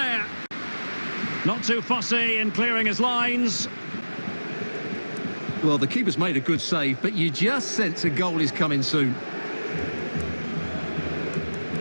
Not too fussy in clearing his lines. Well, the keeper's made a good save, but you just sense a goal is coming soon.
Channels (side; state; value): both; inverted; correlation -1.00